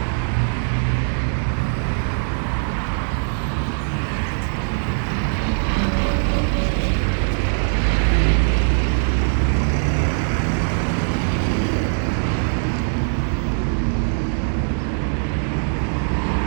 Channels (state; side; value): silent; left; digital silence